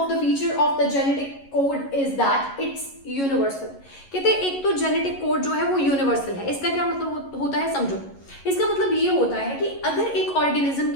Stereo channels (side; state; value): right; late; 11 ms